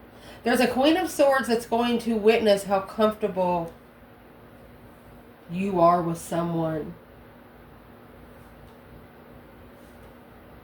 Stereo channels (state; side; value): identical; both; correlation 1.00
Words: There's a Queen of Swords that's going to witness how comfortable you are with someone.